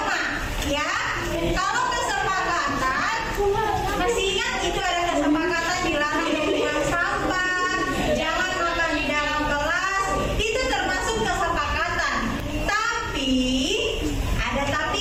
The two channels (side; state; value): both; identical; correlation 1.00